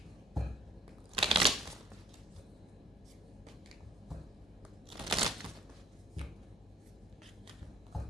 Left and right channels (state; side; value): normal; both; correlation 0.60